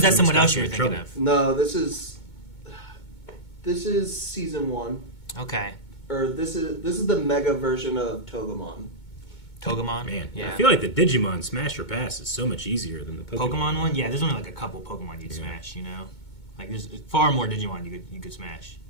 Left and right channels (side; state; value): right; late; 2.2 ms